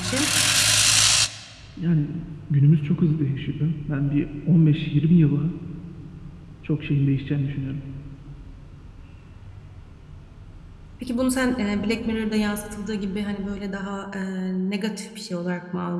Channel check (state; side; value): identical; both; correlation 1.00